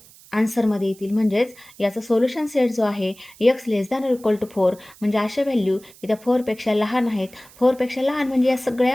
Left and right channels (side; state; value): right; noise; hiss, 24 dB below the sound